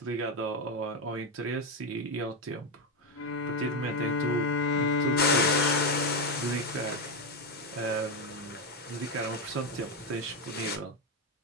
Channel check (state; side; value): normal; both; correlation 0.08